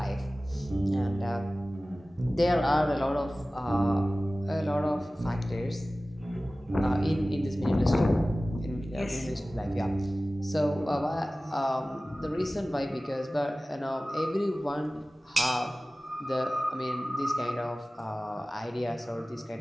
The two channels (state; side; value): normal; both; correlation 0.97